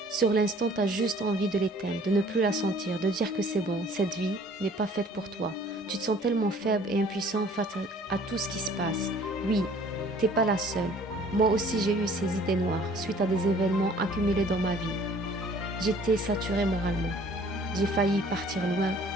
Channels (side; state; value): both; normal; correlation 0.54